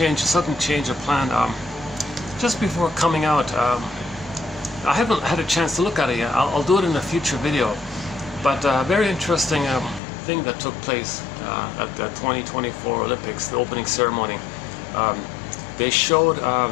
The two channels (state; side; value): drops out; right; at 10.0 s